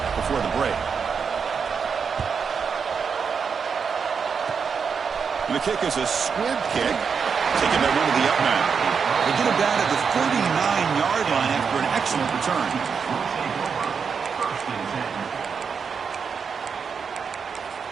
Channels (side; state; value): left; quieter; 6.1 dB